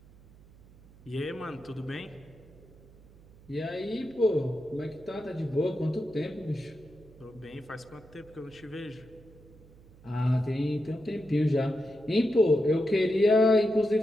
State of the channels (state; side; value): noise; right; hum, 24 dB below the sound